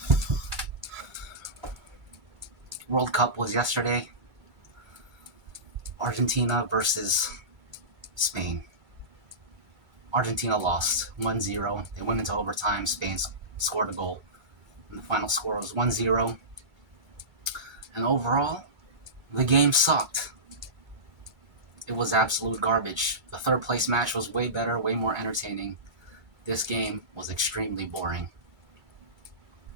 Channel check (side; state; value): left; late; 2.3 ms